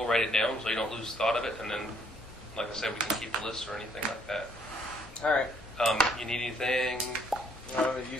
write it down so you don't lose thought of it. And then, like I said, we can keep a list or anything like that. All right. You need anything? I'm going to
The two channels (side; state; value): both; normal; correlation 0.67